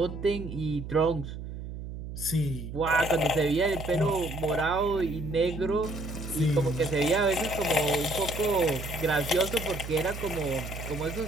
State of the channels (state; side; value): noise; right; hum, 9 dB below the sound